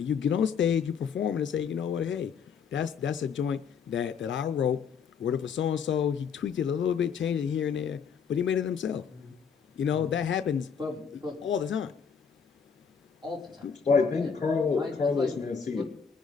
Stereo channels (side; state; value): right; quieter; 6.6 dB